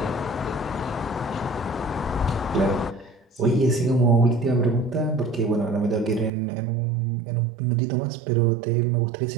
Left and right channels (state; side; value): drops out; left; at 6.3 s